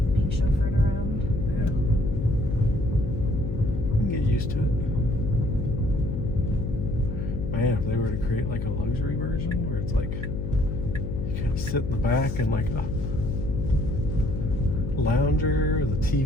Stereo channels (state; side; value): noise; left; hum, 4 dB below the sound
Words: Being chauffeured around. Yeah. You can get used to it. Man, if they were to create like a luxury version where it's like you kind of sit in the back and like a lounger, the